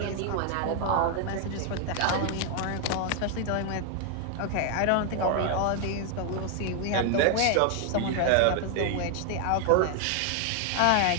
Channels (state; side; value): different; both; correlation 0.00